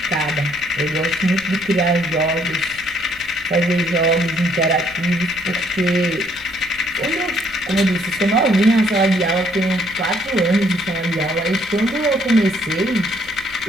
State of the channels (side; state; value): left; noise; rumble, 23 dB below the sound